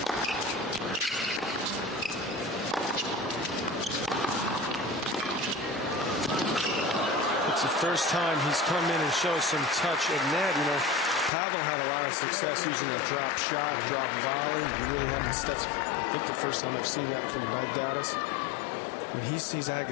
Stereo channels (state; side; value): drops out; right; at 11.3 s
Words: First time he's come in and shows some touch at net. Pavel had a lot of success using a drop shot, drop volley. You really haven't. That's, I think, the first time I've seen that from Baghdatis. When he sees